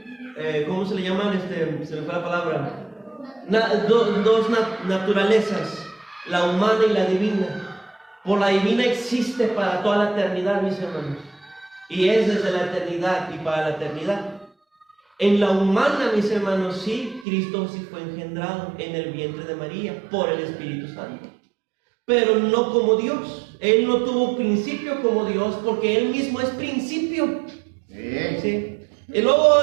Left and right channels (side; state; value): left; drops out; at 17.2 s